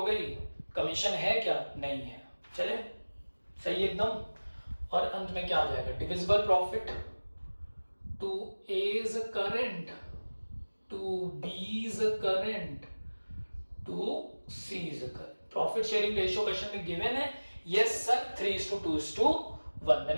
गई, कमीशन है क्या? नहीं है, चले सही एकदम। और अंत में क्या आ जाएगा? Divisible profit to A's current, to B's current, to C's current. Profit sharing ratio question में गिवन है। Yes sir, 3:2:1।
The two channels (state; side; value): inverted; both; correlation -1.00